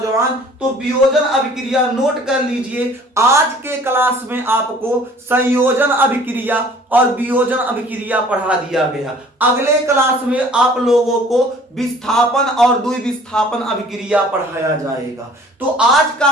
तो वियोजन अभिक्रिया नोट कर लीजिए। आज के क्लास में आपको संयोजन अभिक्रिया और वियोजन अभिक्रिया पढ़ा दिया गया। अगले क्लास में आप लोगों को विस्थापन और द्विविस्थापन अभिक्रिया पढ़ाया जाएगा। तो आज का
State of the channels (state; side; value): normal; both; correlation 0.52